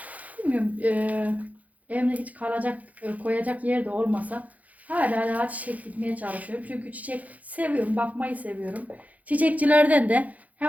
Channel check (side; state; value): left; late; 0.075 ms